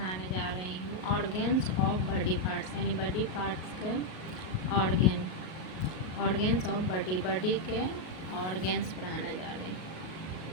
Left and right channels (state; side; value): late; right; 38 ms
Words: जा रही हूँ ऑर्गेन्स ऑफ बॉडी पार्ट्स, यानी बॉडी पार्ट्स के ऑर्गेन्स ऑफ बॉडी के ऑर्गेन्स पढ़ाने जा रही हूँ।